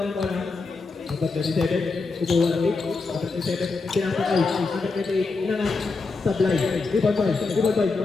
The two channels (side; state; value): right; quieter; 4.0 dB